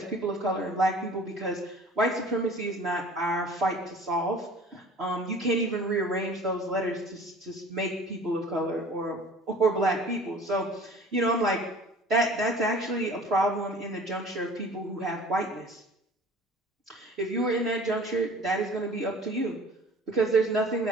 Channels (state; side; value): normal; both; correlation 0.46